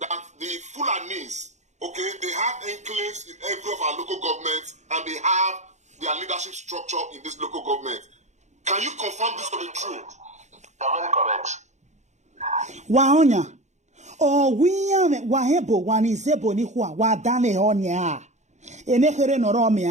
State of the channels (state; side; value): late; left; 0.34 ms